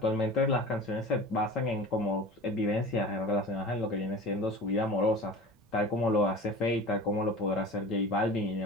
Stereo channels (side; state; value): both; normal; correlation 0.37